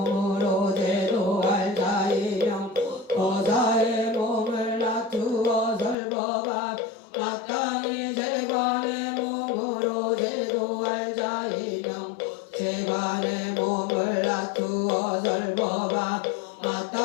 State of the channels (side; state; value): right; drops out; at 6.0 s